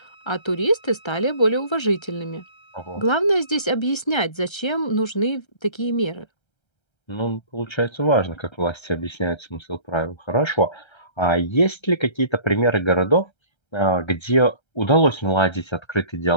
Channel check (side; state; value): right; late; 1.3 ms